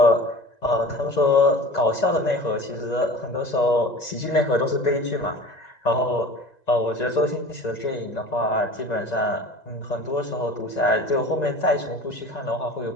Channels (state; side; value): late; right; 1.9 ms